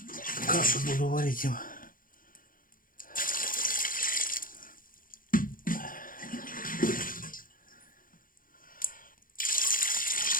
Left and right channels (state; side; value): late; right; 0.40 ms